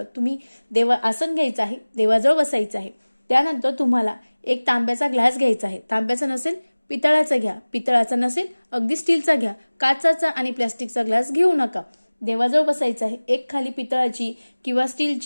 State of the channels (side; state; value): both; inverted; correlation -1.00